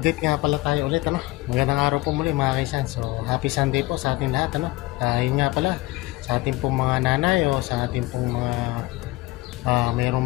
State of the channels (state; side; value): quieter; right; 19.9 dB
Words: nga pala tayo ulit, ano? Magandang araw po muli mga kaisan. So, happy Sunday po sa ating lahat, ano? Yun nga pala, sa ating pong mga nanay o sa ating pong mga